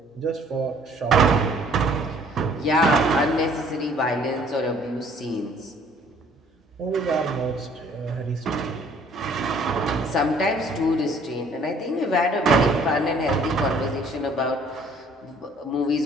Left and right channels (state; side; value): normal; both; correlation 0.58